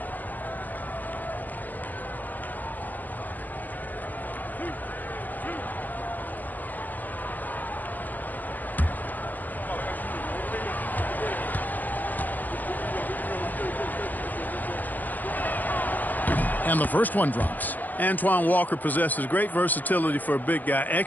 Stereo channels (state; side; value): late; right; 0.084 ms